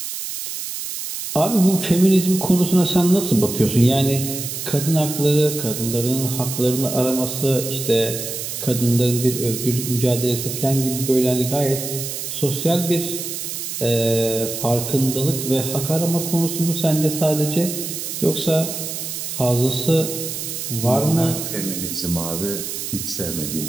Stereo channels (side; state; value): right; noise; hiss, 6 dB below the sound